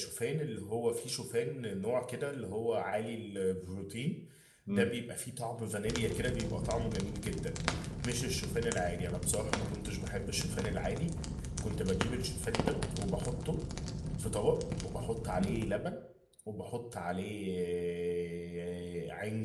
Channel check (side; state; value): both; identical; correlation 1.00